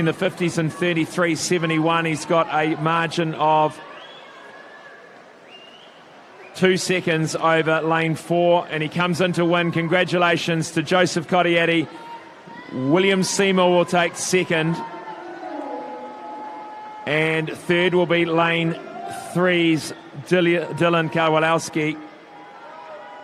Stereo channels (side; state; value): both; identical; correlation 1.00